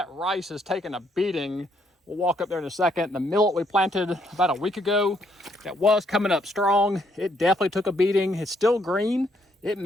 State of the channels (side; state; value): both; normal; correlation 0.71